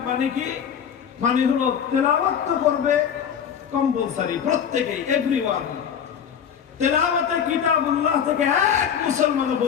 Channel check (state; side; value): quieter; right; 8.1 dB